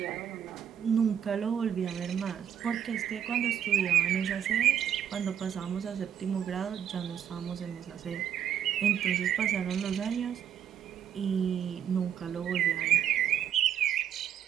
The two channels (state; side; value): quieter; left; 9.3 dB